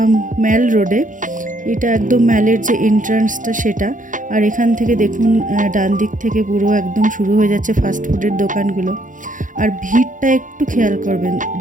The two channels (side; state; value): left; late; 0.38 ms